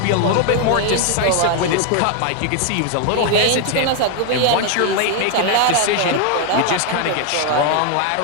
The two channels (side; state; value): both; different; correlation 0.01